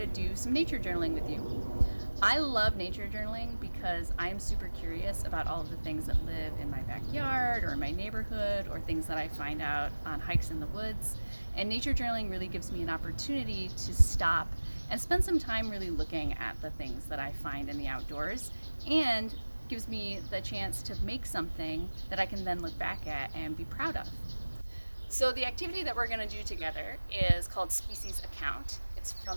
do some nature journaling with you. I love nature journaling because I'm super curious about all of the things that live in my backyard or in my neighborhood or things that I find out on hikes in the woods. And nature journaling really gives me an opportunity to stop and spend some time really looking at the things that I find in the outdoors, and gives me the chance to make something that I can then look back at and be proud of. So the activity that we're going to do together is called Species Account. It's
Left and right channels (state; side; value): inverted; both; correlation -1.00